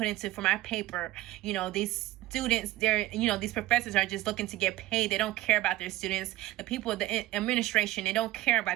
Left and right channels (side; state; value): left; quieter; 16.5 dB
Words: into for my paper. These students, these professors are just looking to get paid. They don't care about their students. The people, the administration, they don't care